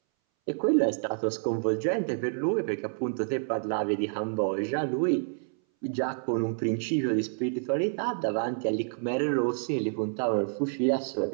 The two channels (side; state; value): left; silent; 59 dB below the other